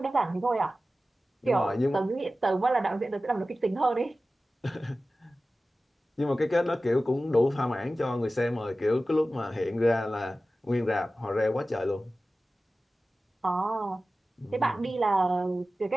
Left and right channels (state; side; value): normal; both; correlation 0.95